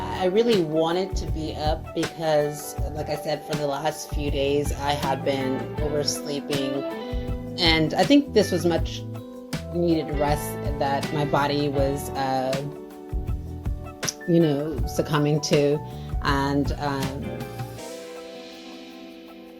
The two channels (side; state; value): both; identical; correlation 1.00